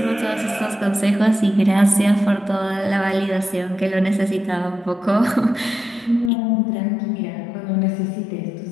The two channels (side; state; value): right; drops out; at 6.3 s